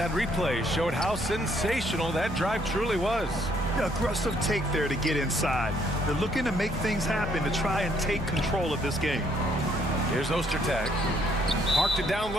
replay showed how sensational that drive truly was. Yeah, aggressive take there to get inside. They're looking to make things happen to try and take control of this game. Here's Ostertag. Parked it down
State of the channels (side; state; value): both; normal; correlation 0.68